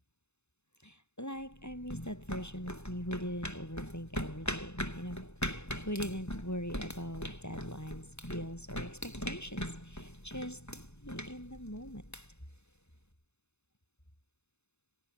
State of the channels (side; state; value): right; late; 0.81 ms